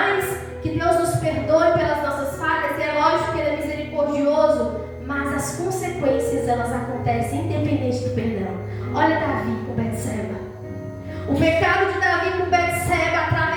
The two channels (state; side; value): identical; both; correlation 1.00